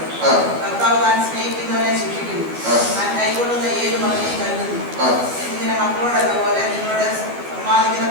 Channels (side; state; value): left; late; 12 ms